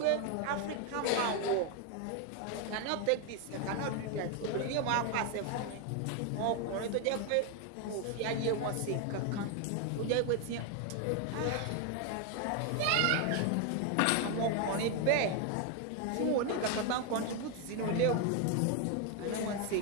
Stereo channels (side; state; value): both; different; correlation 0.01